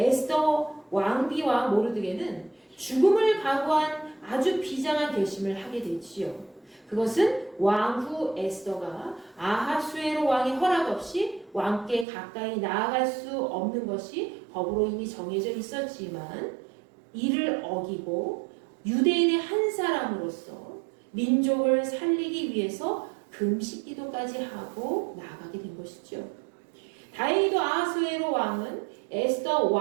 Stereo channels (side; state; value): left; drops out; at 12.1 s